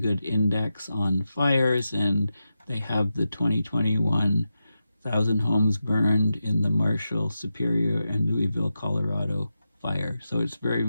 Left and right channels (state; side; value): inverted; both; correlation -0.90